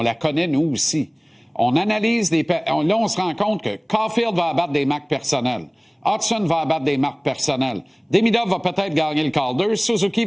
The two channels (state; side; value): identical; both; correlation 1.00